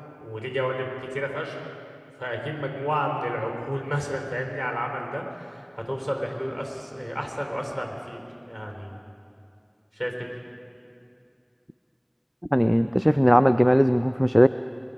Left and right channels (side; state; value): both; identical; correlation 1.00